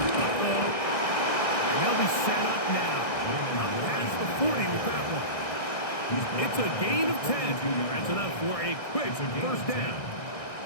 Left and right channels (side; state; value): right; late; 1.6 ms